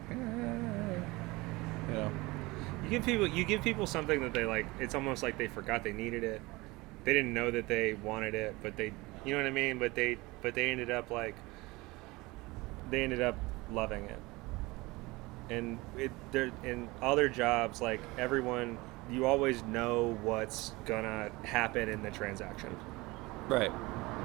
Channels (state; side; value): quieter; left; 22.4 dB